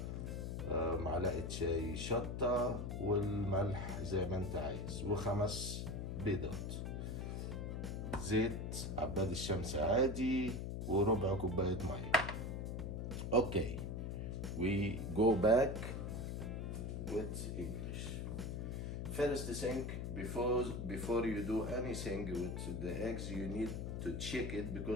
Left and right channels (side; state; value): left; noise; hum, 3 dB below the sound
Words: معلقة شاي شطة، والملح زي ما انت عايز، و5 بيضات، زيت عباد الشمس عادي، وربع كوباية مية. Okay, we go back with English. First thing, before you do anything with the eggs, you need to check it